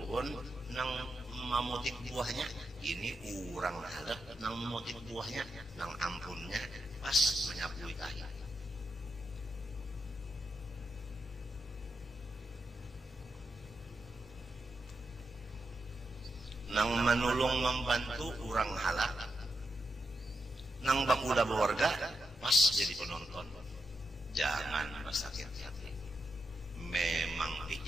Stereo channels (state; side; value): normal; both; correlation 0.86